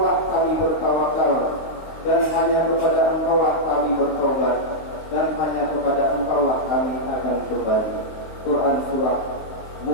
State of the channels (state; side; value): late; right; 19 ms